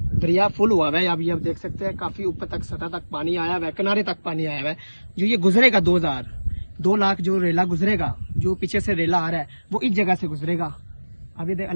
दरिया फुल हुआ है, आप ये देख सकते हैं, काफ़ी ऊपर तक सतह तक पानी आया हुआ है, किनारे तक पानी आया हुआ है। जो ये गुजरेगा 2 लाख जो रेला गुजरेगा, जो पीछे से रेला आ रहा है, वो इस जगह से गुजरेगा। अभी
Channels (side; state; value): both; inverted; correlation -1.00